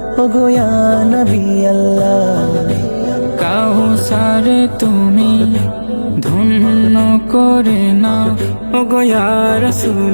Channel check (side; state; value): both; inverted; correlation -1.00